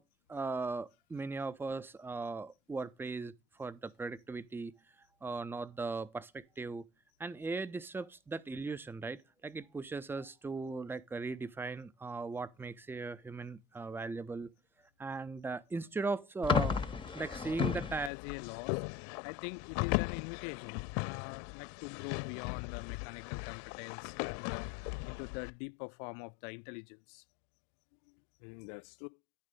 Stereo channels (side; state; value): right; drops out; at 18.1 s